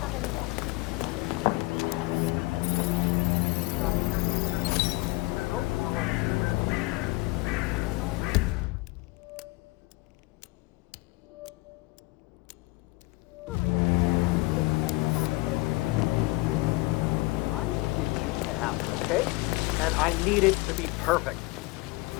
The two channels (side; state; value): right; quieter; 23.0 dB